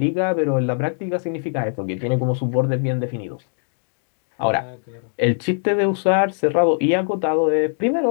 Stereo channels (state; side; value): silent; right; digital silence